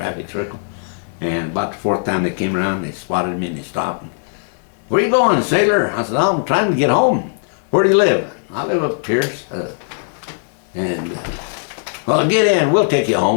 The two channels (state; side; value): silent; right; digital silence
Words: circle. And about the fourth time they came around, they spotted me and they stopped. And, where you going, sailor? I said, I'm trying to get home. Where do you live? I live up Pierce. Well, get in. We'll take you